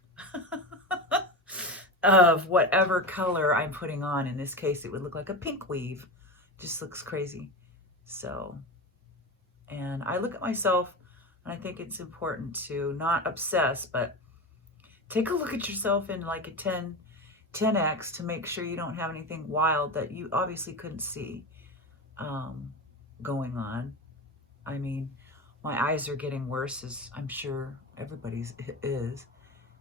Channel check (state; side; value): normal; both; correlation 0.23